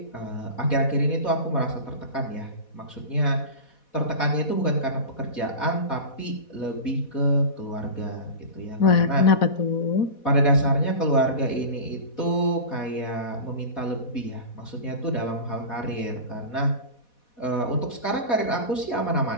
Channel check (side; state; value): right; late; 4.1 ms